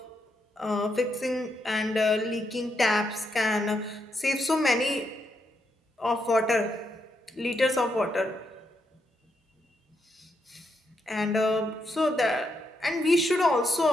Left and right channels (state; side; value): normal; both; correlation 0.80